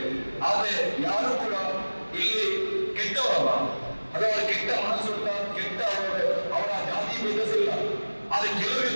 ಆದ್ರೆ ಯಾರು ಕೂಡ ಇಲ್ಲಿ ಕೆಟ್ಟವರಲ್ಲ, ಅದು ಅವರ ಕೆಟ್ಟ ಮನಸ್ಸುಂಟ, ಕೆಟ್ಟ ಅವರ ಜಾತಿ ಭೇದಿಸಿಲ್ಲ. ಆದ್ರೆ ಕೆಲವು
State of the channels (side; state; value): both; inverted; correlation -1.00